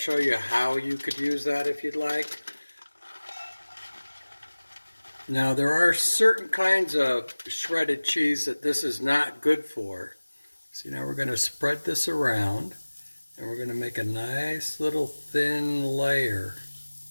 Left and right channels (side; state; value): both; inverted; correlation -1.00